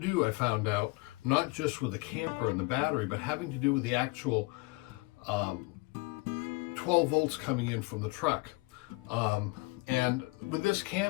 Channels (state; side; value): quieter; right; 25.6 dB